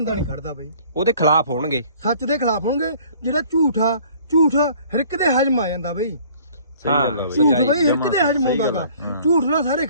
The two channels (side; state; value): both; inverted; correlation -0.53